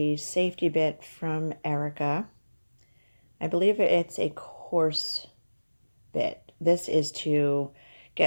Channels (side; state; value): both; inverted; correlation -1.00